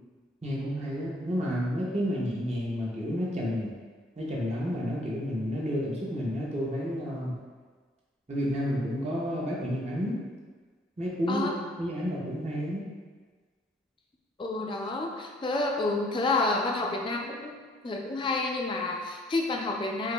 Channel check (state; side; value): normal; both; correlation 0.63